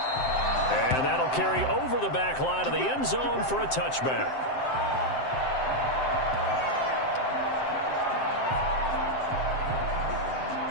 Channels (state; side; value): late; right; 7.7 ms